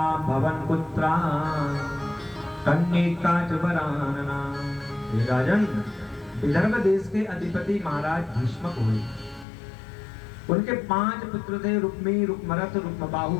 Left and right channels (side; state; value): right; drops out; at 9.5 s